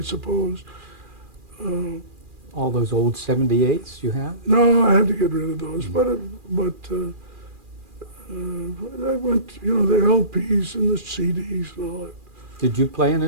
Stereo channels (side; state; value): left; late; 2.4 ms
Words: All those old 78s you have? No, I had to get rid of those, but I went, you know, the LPs and the CDs and all that. Did you play an